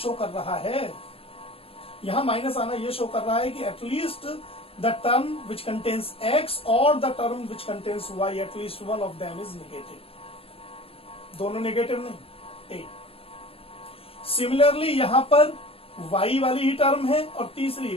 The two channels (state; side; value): late; right; 0.27 ms